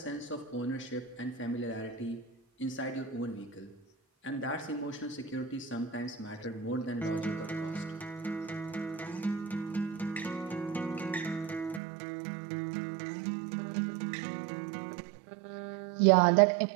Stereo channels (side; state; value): left; drops out; at 11.8 s